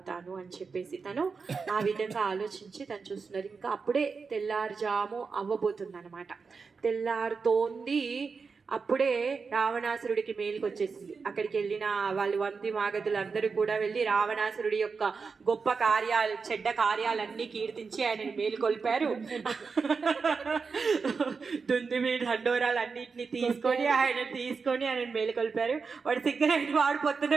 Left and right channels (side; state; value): left; quieter; 5.0 dB